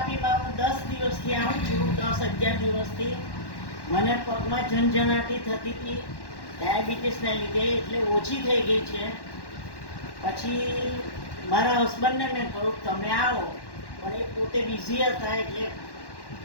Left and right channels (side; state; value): right; late; 1.1 ms